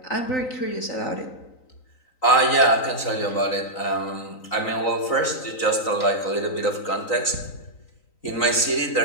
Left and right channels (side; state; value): right; late; 3.9 ms